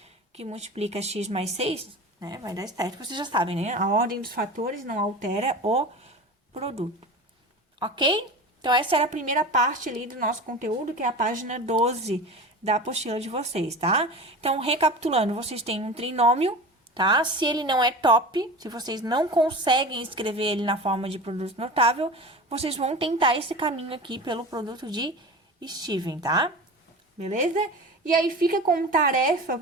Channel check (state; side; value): normal; both; correlation 0.33